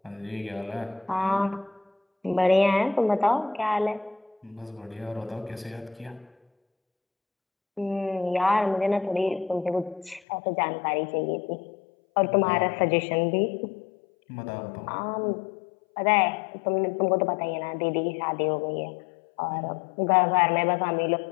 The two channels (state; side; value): drops out; right; at 10.2 s